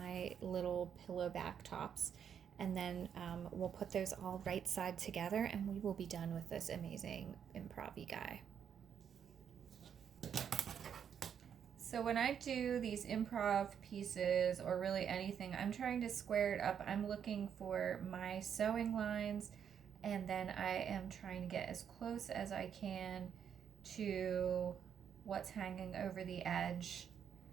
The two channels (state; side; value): quieter; left; 8.1 dB